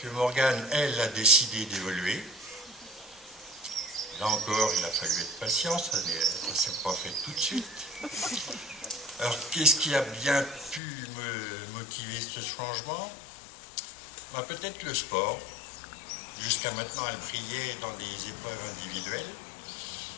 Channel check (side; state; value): right; drops out; at 10.8 s